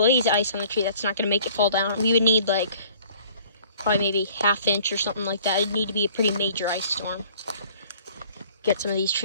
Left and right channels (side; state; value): both; inverted; correlation -0.53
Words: ice on the tree. That's not going to make it fall down. We would need like probably maybe ½ inch or something like that. It'd need to be a pretty major ice storm. Get some of these